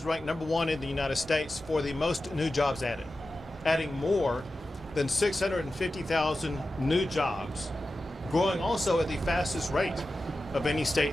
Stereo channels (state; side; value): normal; both; correlation 0.93